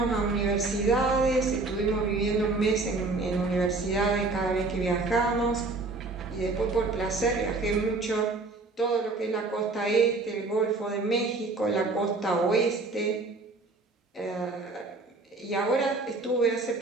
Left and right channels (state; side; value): quieter; left; 3.5 dB